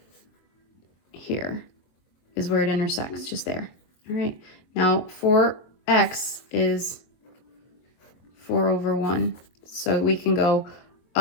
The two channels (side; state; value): right; late; 22 ms